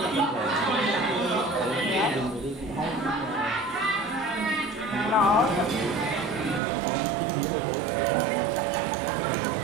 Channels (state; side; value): drops out; left; at 6.6 s